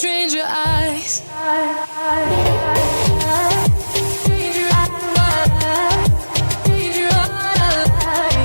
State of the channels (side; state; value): both; inverted; correlation -1.00